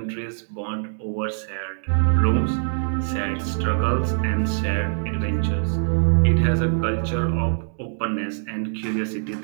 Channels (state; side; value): silent; left; digital silence